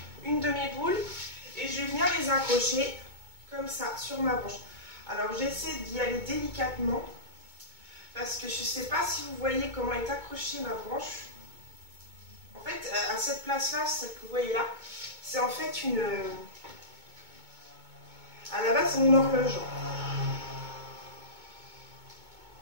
une de mes boules et je viens les accrocher comme ça sur ma branche. Alors j'essaie d'y aller délicatement parce que je ne sais pas si vous voyez comment est accrochée ma branche. En fait, à cette place-là, celle que vous voyez là, c'est en fait une... À la base, c'est mon horloge.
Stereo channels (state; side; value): late; left; 2.2 ms